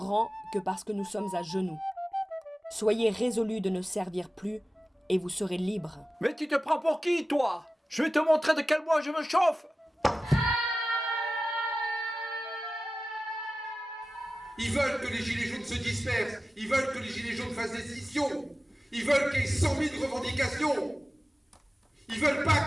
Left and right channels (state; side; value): normal; both; correlation 0.95